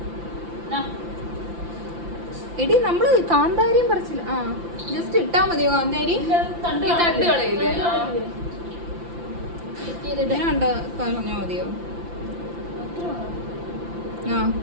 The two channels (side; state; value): left; late; 5.8 ms